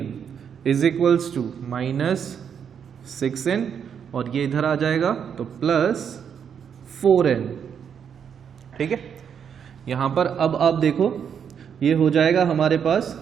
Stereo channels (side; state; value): left; quieter; 7.7 dB